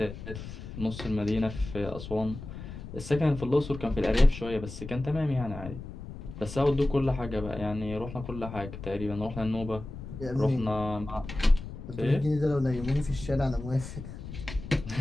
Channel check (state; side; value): noise; left; rumble, 11 dB below the sound